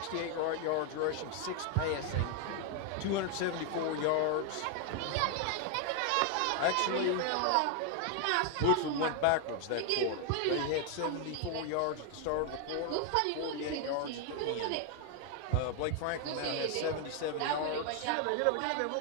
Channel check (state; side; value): different; both; correlation 0.01